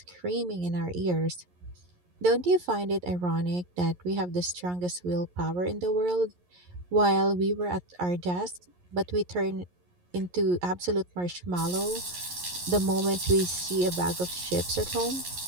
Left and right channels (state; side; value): late; left; 11 ms